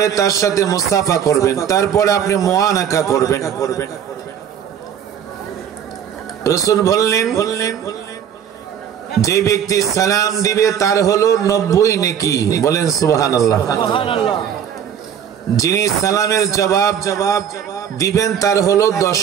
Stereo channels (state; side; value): quieter; left; 8.8 dB